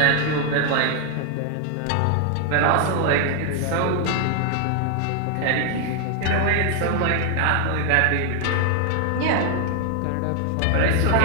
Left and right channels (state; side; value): different; both; correlation 0.00